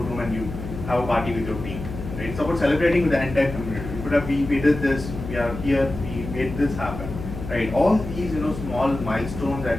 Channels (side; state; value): left; noise; hum, 9 dB below the sound